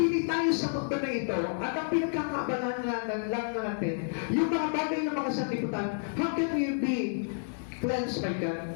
tayo sa mundo na ito, at ang pinagkakabalan lang natin, yung mga bagay na mga sanlibutan, how can we be cleansed by God?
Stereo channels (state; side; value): silent; right; 58 dB below the other